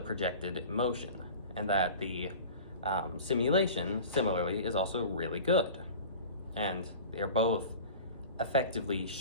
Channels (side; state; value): both; inverted; correlation -0.38